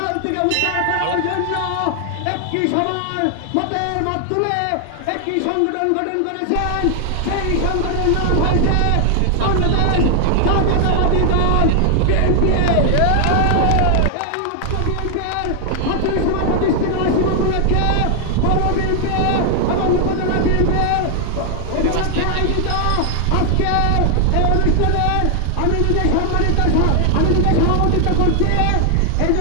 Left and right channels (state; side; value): different; both; correlation 0.00